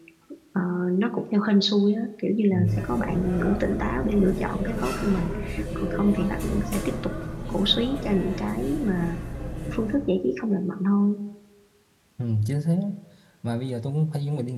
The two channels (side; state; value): both; identical; correlation 1.00